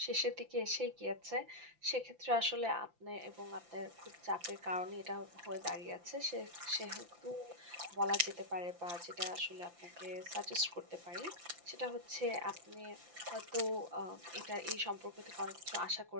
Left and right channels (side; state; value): left; late; 5.8 ms